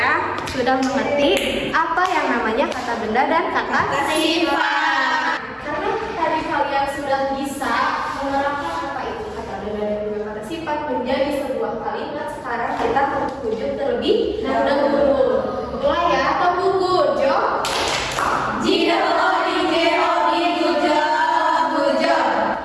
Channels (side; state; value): both; identical; correlation 1.00